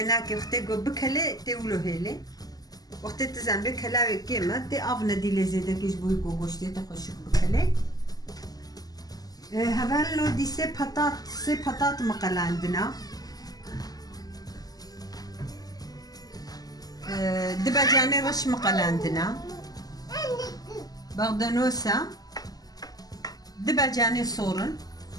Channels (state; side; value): late; right; 0.18 ms